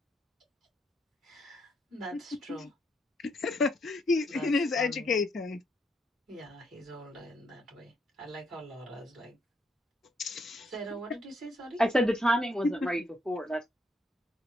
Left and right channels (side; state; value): both; normal; correlation 0.74